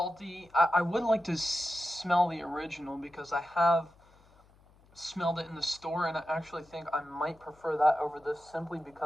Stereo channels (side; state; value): left; noise; hum, 29 dB below the sound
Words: I would like to smell the original because I have smelled it in the store, and I actually think I might prefer that over this simply